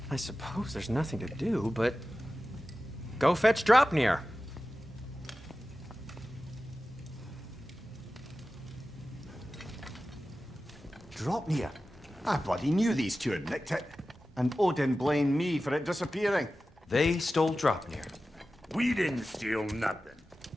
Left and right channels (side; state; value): both; normal; correlation 0.95